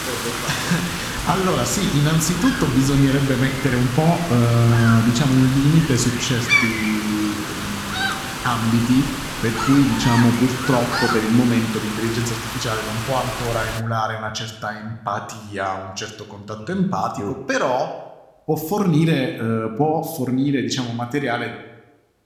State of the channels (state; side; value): identical; both; correlation 1.00